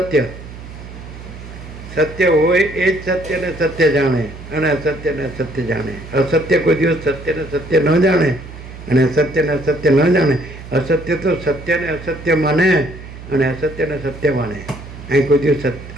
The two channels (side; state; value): right; noise; hum, 14 dB below the sound